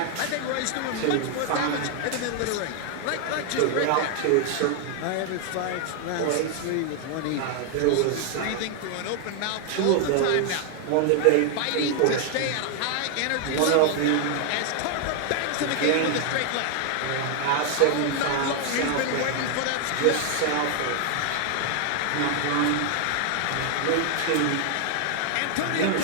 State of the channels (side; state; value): both; different; correlation 0.00